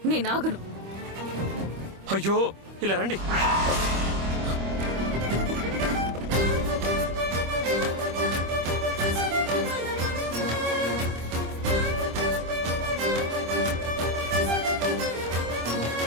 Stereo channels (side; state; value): left; late; 25 ms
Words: నేను ఆగను. అయ్యో, ఇలా రండి.